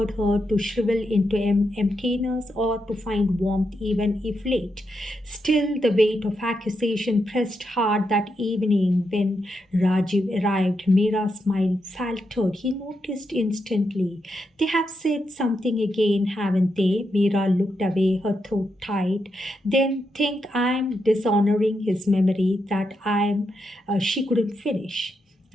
her to shrivel into emptiness or to find warmth even if late? Still, the weight of accusation pressed hard that evening when Rajiv arrived. Mira's smile faltered. He noticed instantly. They have said something again, haven't they? Mira looked away, her throat tight. Then think I'm dishonoring his memory, that she couldn't finish.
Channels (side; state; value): both; normal; correlation 0.83